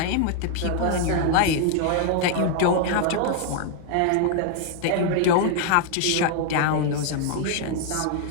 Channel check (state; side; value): different; both; correlation 0.00